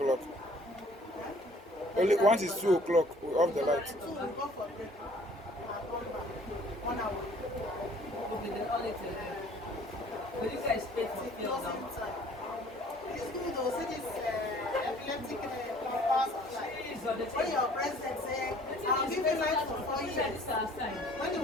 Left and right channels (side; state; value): both; normal; correlation 0.55